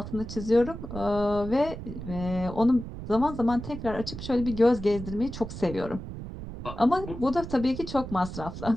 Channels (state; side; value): noise; right; rumble, 10 dB below the sound